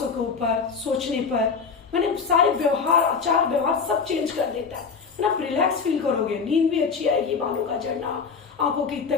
के ऊपर, सोचने पर, मैंने सारे व्यवहार, आचार व्यवहार सब चेंज कर देता है। आप रिलैक्स फील करोगे, नींद भी अच्छी आएगी, बालों का झड़ना, आंखों की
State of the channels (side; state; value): right; quieter; 5.5 dB